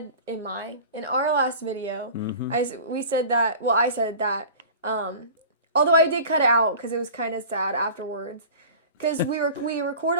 in our last video, I said that although I did cut it out because it was kind of sad afterwards. Because we record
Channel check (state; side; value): inverted; both; correlation -0.39